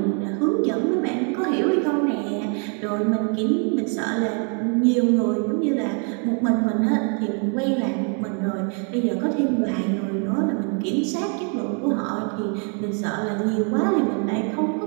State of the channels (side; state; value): left; quieter; 39.9 dB